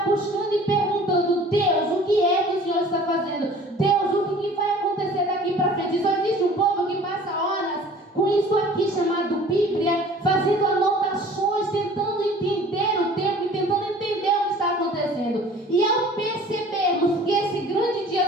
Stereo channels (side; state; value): both; normal; correlation 0.48